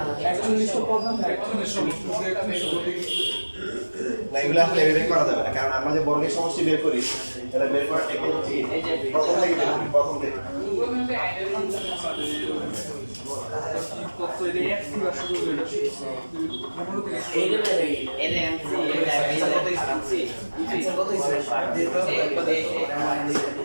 এগুলো আসলে এভাবে করা যাবে না কারণ আমরা যে বর্গের সমষ্টি বের করি এটা বের করার টেকনিক হচ্ছে প্রথম থেকে বের করি প্রথম থেকে না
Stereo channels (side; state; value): both; inverted; correlation -1.00